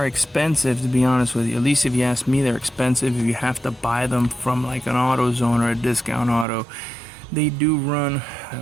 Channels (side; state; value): left; drops out; at 6.5 s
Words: expensive, to be honest with you. At least if you ask me, they're expensive if you have to buy them from like an AutoZone or a discount auto. They do run,